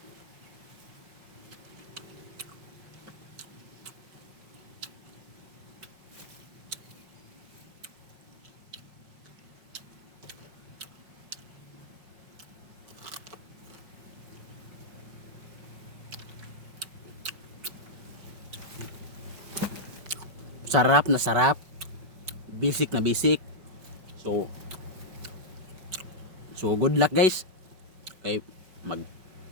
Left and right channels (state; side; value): late; left; 5.2 ms